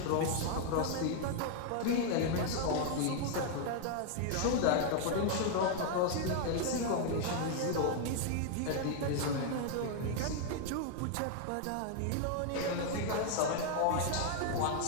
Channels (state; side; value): different; both; correlation 0.00